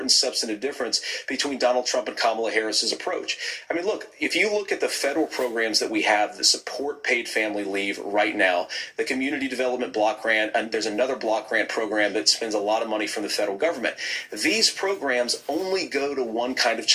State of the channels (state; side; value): identical; both; correlation 1.00